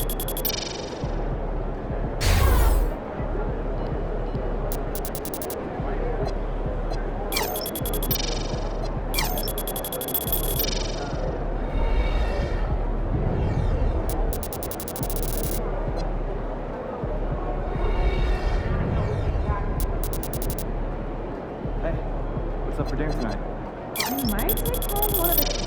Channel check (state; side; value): identical; both; correlation 1.00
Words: What's up for dinner tonight? I might take home one of the